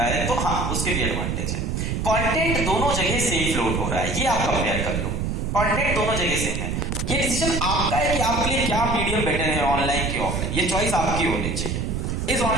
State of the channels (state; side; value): noise; right; rumble, 1 dB below the sound